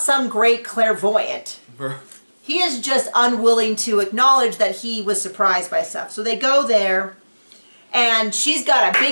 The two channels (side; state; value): both; inverted; correlation -1.00